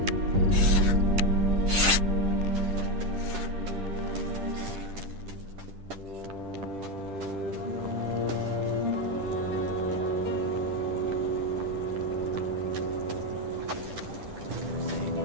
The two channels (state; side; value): late; left; 10 ms